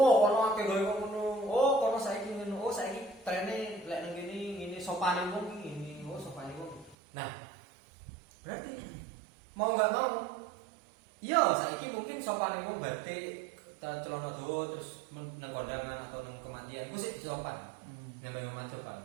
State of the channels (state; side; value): drops out; left; at 7.0 s